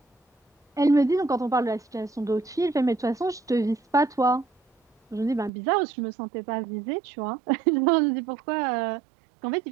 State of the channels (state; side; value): drops out; left; at 5.5 s